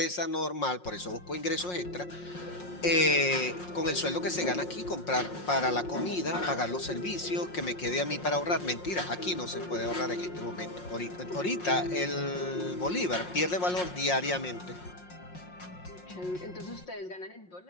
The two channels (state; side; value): late; right; 5.6 ms